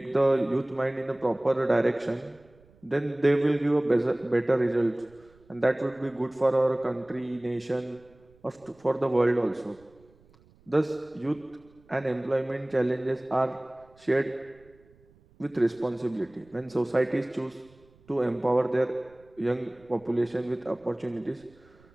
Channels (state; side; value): noise; right; rumble, 29 dB below the sound